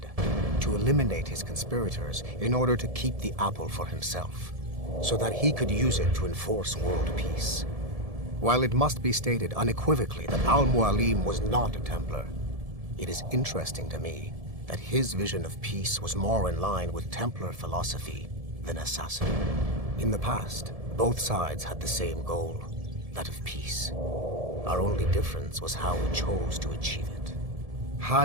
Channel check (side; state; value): left; late; 1.7 ms